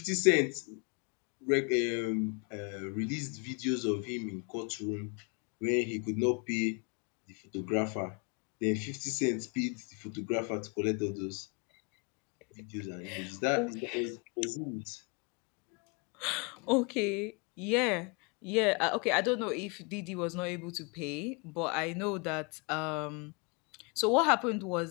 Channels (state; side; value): quieter; right; 32.8 dB